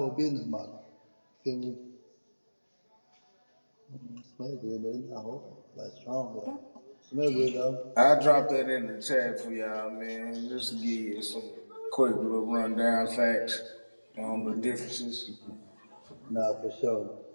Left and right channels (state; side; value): inverted; both; correlation -1.00